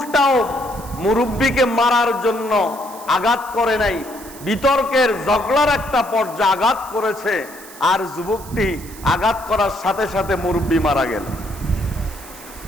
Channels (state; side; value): noise; right; hiss, 17 dB below the sound